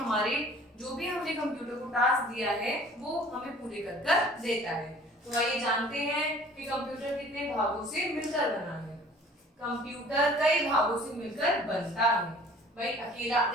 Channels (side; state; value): both; normal; correlation 0.50